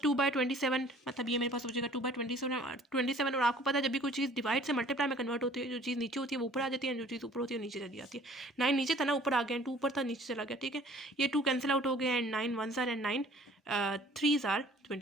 मतलब ये मेरे पास हो जाएगा 2/27, और आपको पता है जब भी कोई चीज़ डिवाइड से मल्टीप्लाई में कन्वर्ट होती है, जो चीज़ नीचे होती है वो ऊपर आ जाती है, जो चीज़ ऊपर होती है वो नीचे चली जाती है। 9 नीचे था ना, ऊपर आ गया, 2 ऊपर था नीचे चला गया, ठीक है। ये 2 कैंसिल आउट हो गया, and 9 1s are and 9 3s are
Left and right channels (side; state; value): both; normal; correlation 0.52